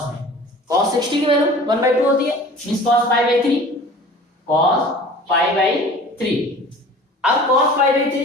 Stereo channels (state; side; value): normal; both; correlation 0.43